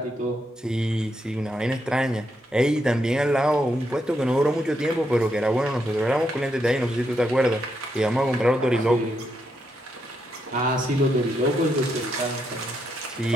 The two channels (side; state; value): both; normal; correlation 0.80